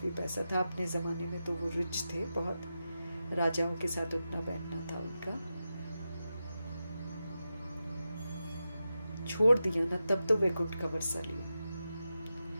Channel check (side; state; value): both; inverted; correlation -0.90